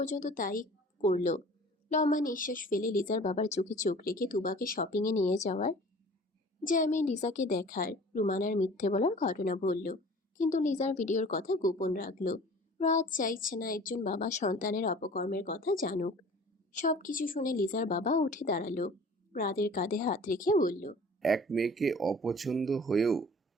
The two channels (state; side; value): normal; both; correlation 0.46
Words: তাই করলো। লম্বা নিঃশ্বাস ফেলে লিজার বাবার চোখে চোখ রেখে তুবাকে শপিংয়ে নিয়ে যাওয়ার জ্যামে লিজাকে দেখার, রুমানার মিথ্যে বলার ঘটনা বলল। কিন্তু লিজার ভিডিওর কথা গোপন রাখলো। রাত চাইছে না একজন বাবা সন্তানের অপকর্মের কথা জানুক। সবকিছু শুনে লিজার বাবা উঠে দাঁড়ালো। রাতের কাঁধে হাত রেখে বলল, এক মেয়েকে অপছন্দ হয়েও